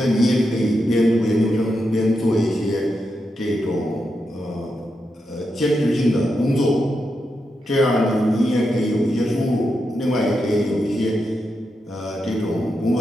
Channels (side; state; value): both; normal; correlation 0.86